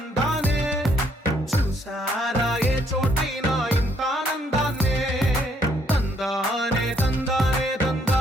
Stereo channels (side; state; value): both; normal; correlation 0.68